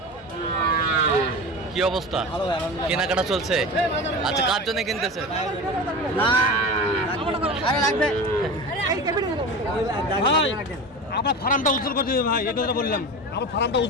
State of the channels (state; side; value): normal; both; correlation 0.29